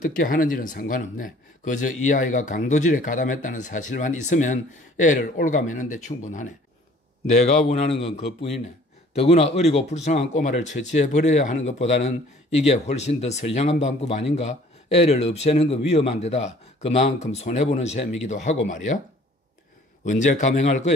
하는지는 상관없네. 그저 이 아이가 강도질에 가담했다는 사실만 있으면 애를 올가매는 데 충분하네. 내가 원하는 건 그뿐이네. 더구나 어리고 불쌍한 꼬마를 처치해버려야 하는 것보다는 이게 훨씬 더 선량한 방법 아닌가? 애를 없애는 건 위험한 데다 그만큼 손해보는 셈이기도 하고 말이야. 언제 감행할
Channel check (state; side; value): normal; both; correlation 0.54